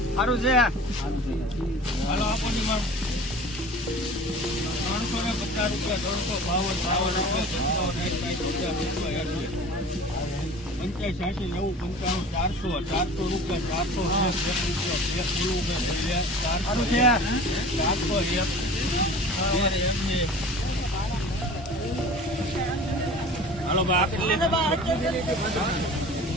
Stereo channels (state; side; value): normal; both; correlation 0.41